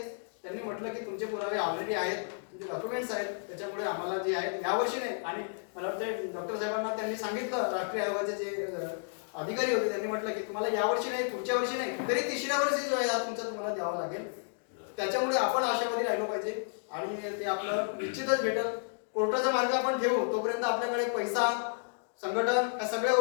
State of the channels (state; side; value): silent; right; digital silence